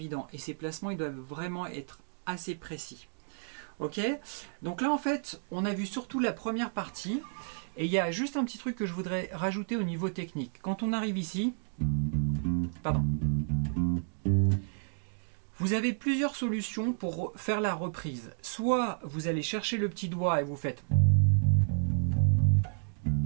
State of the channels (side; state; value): left; silent; digital silence